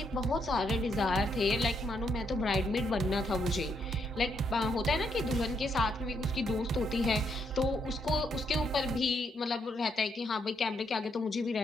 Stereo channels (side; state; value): both; normal; correlation 0.76